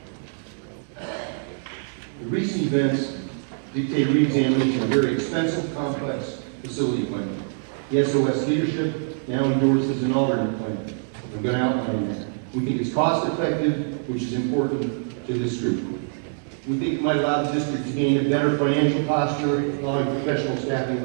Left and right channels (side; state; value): left; silent; digital silence